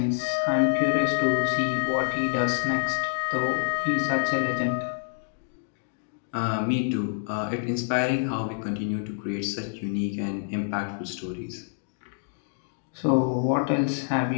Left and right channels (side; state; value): right; silent; digital silence